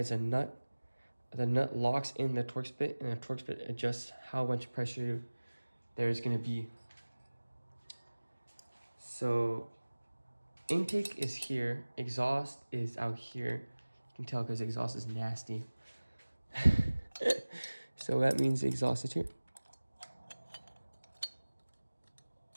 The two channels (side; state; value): both; inverted; correlation -1.00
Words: a nut. The nut locks in the Torx bit, and the Torx bit adjusts how much pressure there's gonna be. So intake is here, exhaust is out here. You can tell because exhaust is nasty. So that means the exhaust is here.